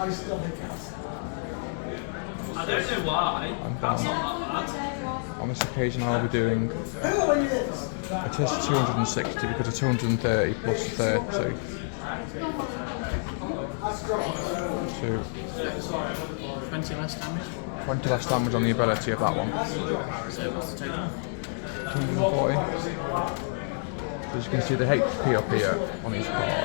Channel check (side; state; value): right; silent; 59 dB below the other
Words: don't know why. And then on this occasion I will be doing, it is 260 because it's 230 plus 30. 20 less damage. 20 less damage on the ability of that one. So what's the total? 240. So as you can see the HP up here on these